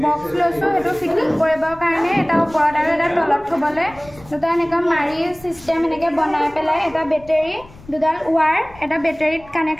বক্স লৈছো এটো ফিটিং কৰিবৰ কাৰণে এটা ওপৰত আৰু এটা তলত থবলে দুটা এনেকা মাৰি সিস্টেম এনেকে বনাই পেলাই এটা বেটাৰী দুডাল ওৱাৰ এটা বেটাৰীত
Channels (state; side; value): noise; left; rumble, 22 dB below the sound